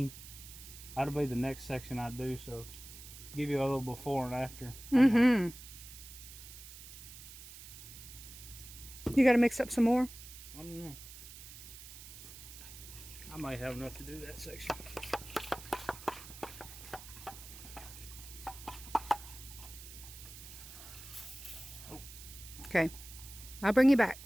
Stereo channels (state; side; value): noise; right; hiss, 14 dB below the sound